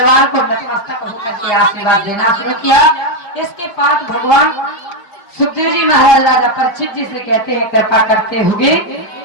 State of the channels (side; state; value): right; late; 4.9 ms